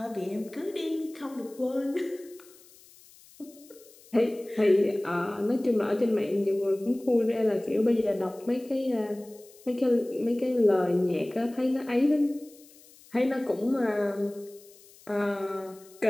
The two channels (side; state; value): left; noise; hiss, 25 dB below the sound